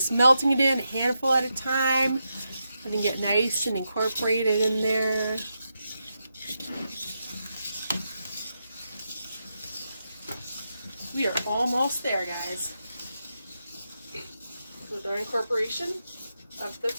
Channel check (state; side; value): inverted; both; correlation -0.86